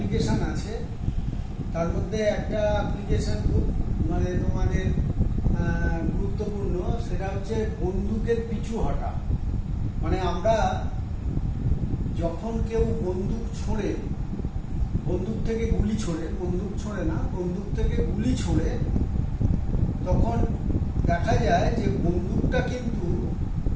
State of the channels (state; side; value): identical; both; correlation 1.00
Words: আছে। তার মধ্যে একটা অ্যাপ্লিকেশান খুব মানে তোমাদের গুরুত্বপূর্ণ, সেটা হচ্ছে বন্দুকের পিছু হটা। মানে আমরা যখন কেউ বন্দুক ছোঁড়ে, বন্দুক থেকে গুলি ছোড়ে, বন্দুক ছোঁড়ে না, বন্দুক থেকে গুলি ছোড়ে, তখন দেখা যায় যে বন্দুকটা কিন্তু